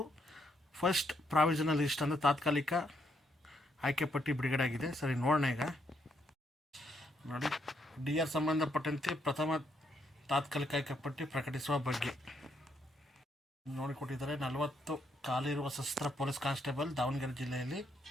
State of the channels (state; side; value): normal; both; correlation 0.75